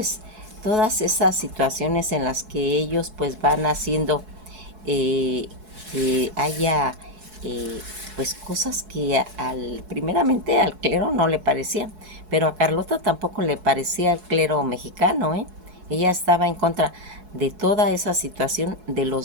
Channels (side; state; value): left; late; 4.7 ms